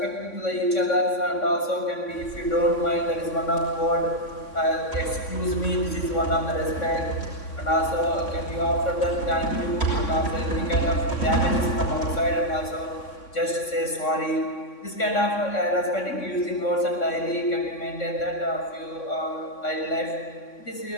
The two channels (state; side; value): late; right; 3.6 ms